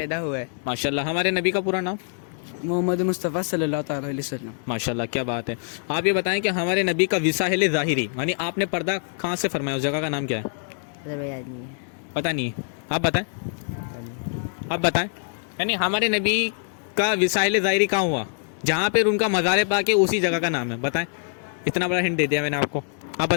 हुए। माशाल्लाह। हमारे नबी का पूरा नाम? मोहम्मद मुस्तफ़ा सल्लल्लाहु अलैहि वसल्लम। माशाल्लाह, क्या बात है। आप ये बताएं कि हमारे नबी का विसाहिल ज़ाहिरी यानी आपने पर्दा कहाँ से फरमाया, उस जगह का नाम क्या है? पता नहीं है, आप बताएं। आप बताएं, यानी हमारे नबी का विसाहिल ज़ाहिरी कहाँ हुआ, जहाँ पर उनका मज़ार पाक है, उसी जगह का नाम है। बताएं, इतना बड़ा हिंट दे दिया मैंने आपको। आप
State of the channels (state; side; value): silent; right; digital silence